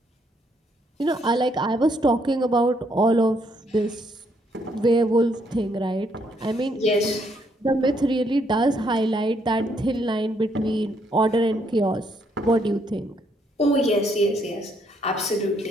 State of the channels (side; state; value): both; normal; correlation 0.72